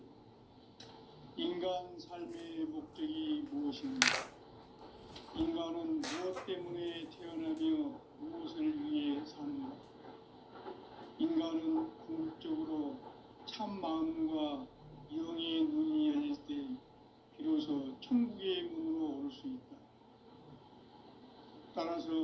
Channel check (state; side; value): identical; both; correlation 1.00